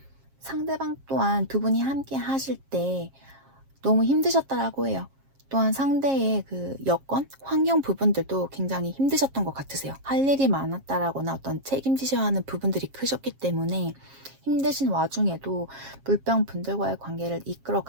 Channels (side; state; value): left; late; 7.4 ms